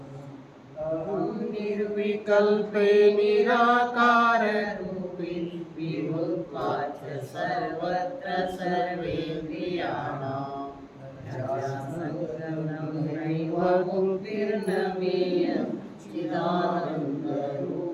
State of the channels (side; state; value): both; identical; correlation 1.00